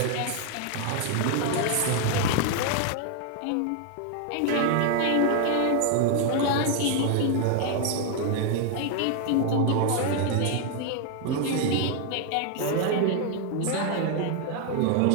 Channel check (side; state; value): both; different; correlation 0.00